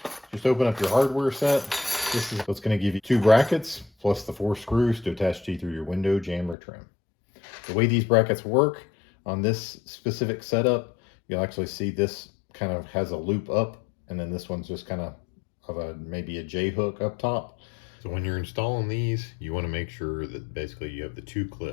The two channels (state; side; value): drops out; right; at 6.6 s